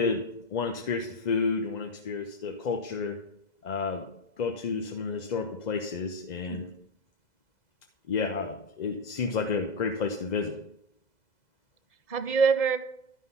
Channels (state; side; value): late; right; 2.0 ms